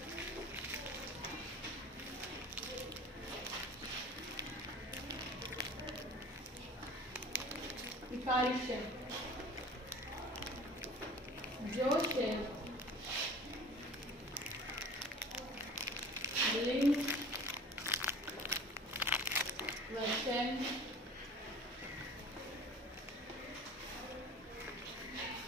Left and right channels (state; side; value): normal; both; correlation 0.43